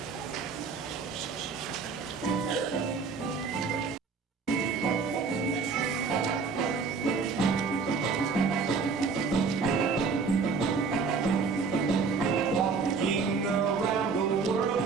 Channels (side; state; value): left; quieter; 5.0 dB